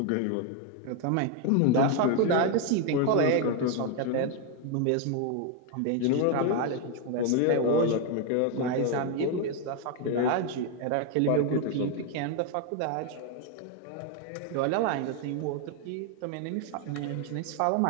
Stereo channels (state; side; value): different; both; correlation 0.01